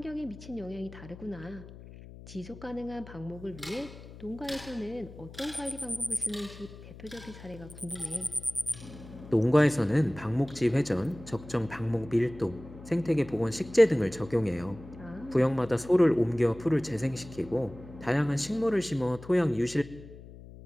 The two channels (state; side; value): noise; left; hum, 16 dB below the sound